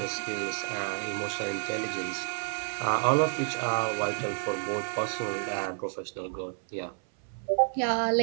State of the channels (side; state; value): left; silent; 58 dB below the other